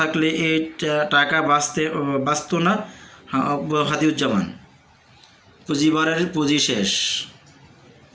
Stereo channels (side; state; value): both; identical; correlation 1.00